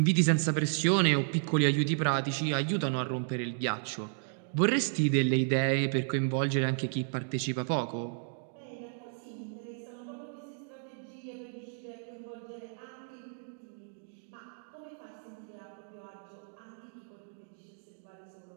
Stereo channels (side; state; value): left; silent; digital silence